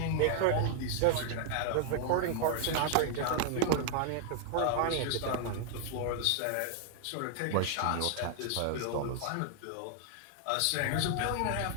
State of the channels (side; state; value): both; different; correlation 0.00